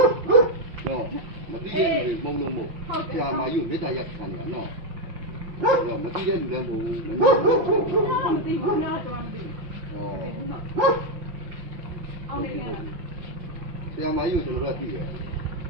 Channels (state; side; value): late; left; 5.8 ms